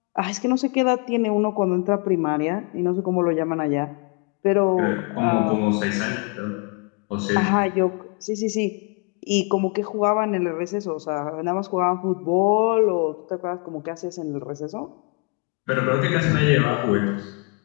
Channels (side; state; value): right; quieter; 33.4 dB